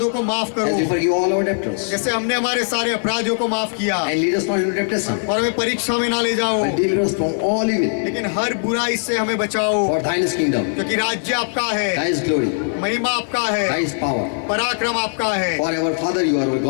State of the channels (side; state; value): right; silent; digital silence